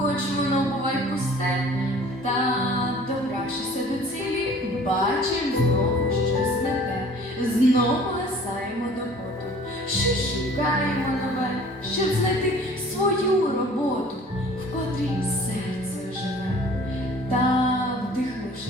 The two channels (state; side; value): normal; both; correlation 0.49